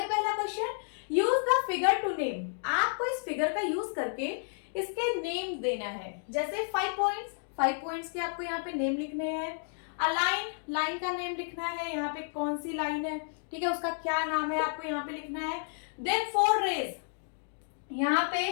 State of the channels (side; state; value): right; silent; digital silence